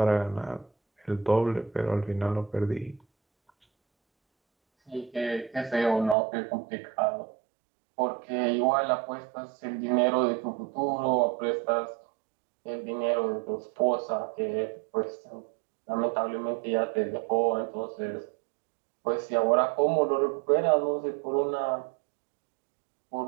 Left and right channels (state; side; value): drops out; left; at 6.2 s